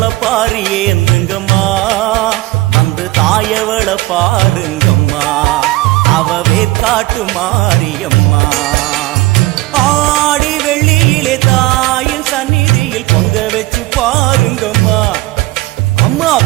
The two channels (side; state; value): left; quieter; 19.0 dB